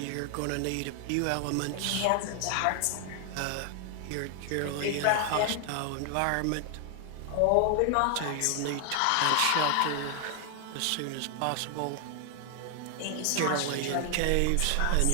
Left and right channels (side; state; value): both; different; correlation 0.00